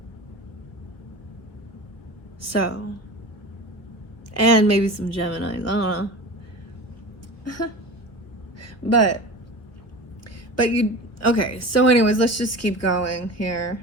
So, and maybe some Geminis. I don't know. but you, okay. So anyways, let's just keep going here.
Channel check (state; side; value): late; right; 1.1 ms